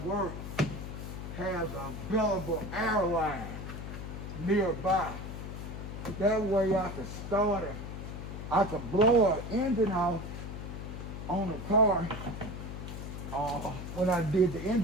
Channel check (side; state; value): left; noise; hum, 7 dB below the sound